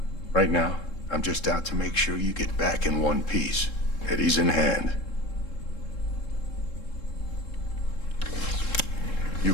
Right now, I'm just out to make sure you get back in one piece. Eddie's in hand. You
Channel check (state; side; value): late; right; 3.7 ms